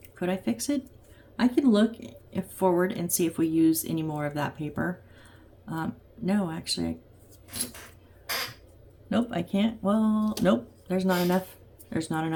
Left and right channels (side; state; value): both; identical; correlation 1.00